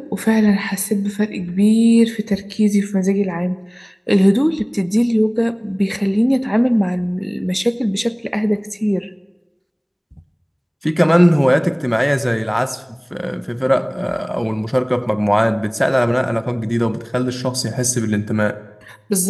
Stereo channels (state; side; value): identical; both; correlation 1.00